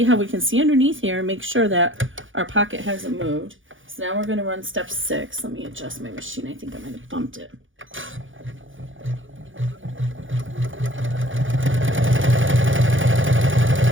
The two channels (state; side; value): late; left; 0.57 ms